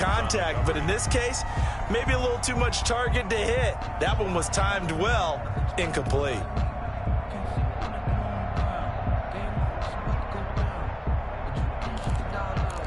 but in this case, maybe a little too much target to hit. That one was timed well, incomplete.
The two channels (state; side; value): identical; both; correlation 1.00